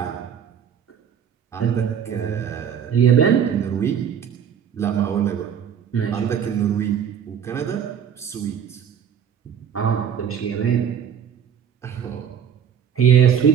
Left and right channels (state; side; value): quieter; left; 8.3 dB